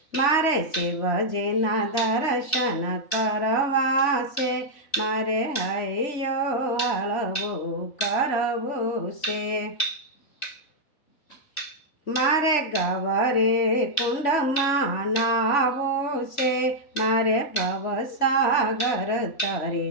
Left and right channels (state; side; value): late; right; 3.0 ms